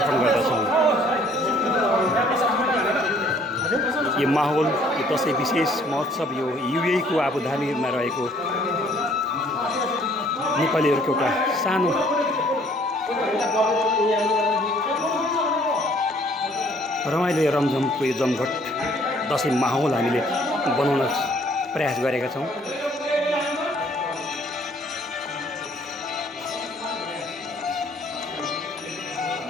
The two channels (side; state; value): both; normal; correlation 0.60